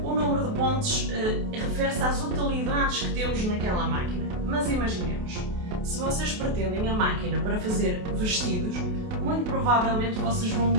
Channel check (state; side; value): late; left; 28 ms